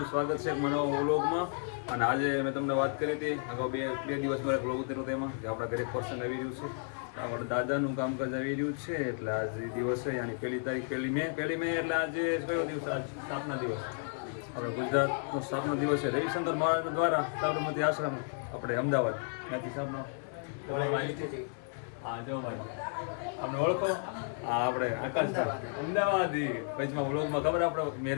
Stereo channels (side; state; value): right; silent; 56 dB below the other